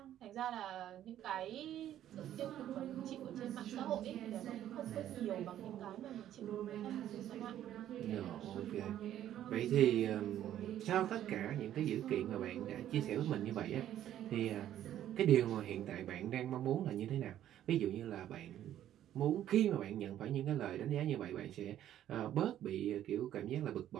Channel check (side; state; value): left; quieter; 11.7 dB